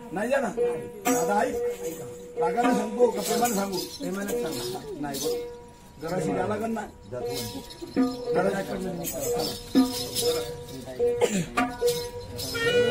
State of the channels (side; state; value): both; identical; correlation 1.00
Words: नाही जाणार दादा आई रागाने सांगू का प्रेमाने सांगू प्रेमाने सांगा नाही बघ जरा शिकायला लागल ना